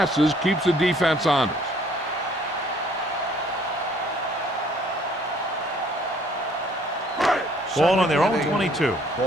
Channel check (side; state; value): both; normal; correlation 0.60